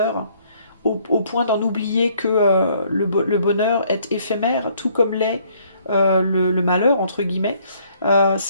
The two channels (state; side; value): inverted; both; correlation -0.64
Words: au point d'en oublier que le bonheur est éphémère, tout comme l'est le malheur entre guillemets.